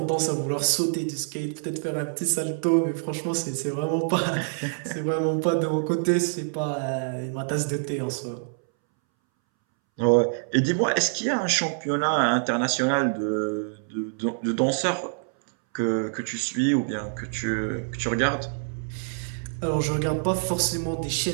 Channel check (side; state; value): left; silent; 61 dB below the other